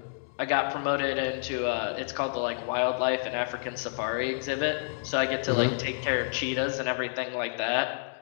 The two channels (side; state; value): right; silent; digital silence